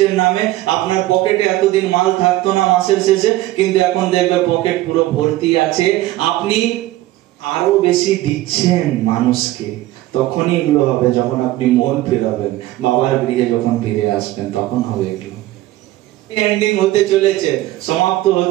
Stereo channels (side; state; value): left; quieter; 16.3 dB